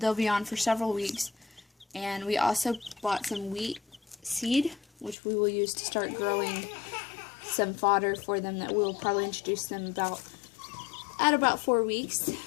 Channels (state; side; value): drops out; right; at 5.2 s